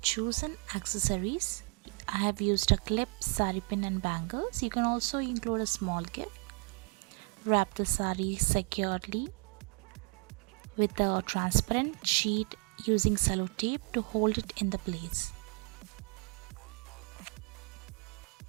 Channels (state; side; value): quieter; left; 33.3 dB